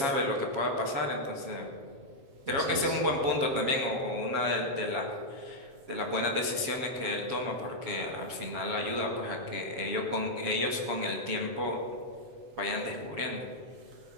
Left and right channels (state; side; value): late; left; 7.3 ms